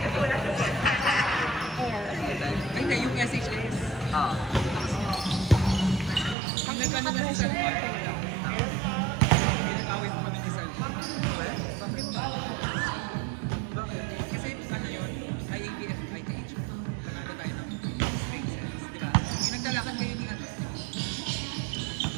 hindi. Yung SHS. Ah. Pag nagkano na si Sir Mark, pinag-away pa kami ni Sir Mark. Bakit? Bakit? Kasi ano yun, IABF, ITH. Panalo tayo ng straight sets, di ba? Yung nagdalakan kayo ni ano.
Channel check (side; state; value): left; drops out; at 6.4 s